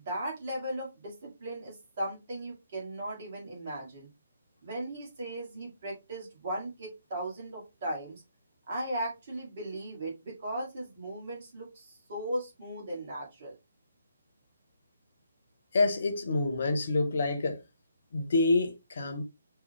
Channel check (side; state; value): both; inverted; correlation -0.76